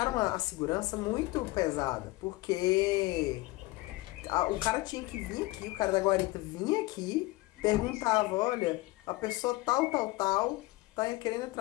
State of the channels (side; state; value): right; quieter; 20.7 dB